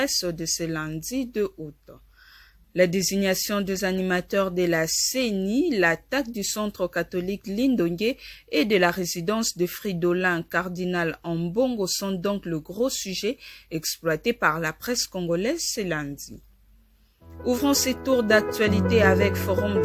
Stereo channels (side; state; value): both; identical; correlation 1.00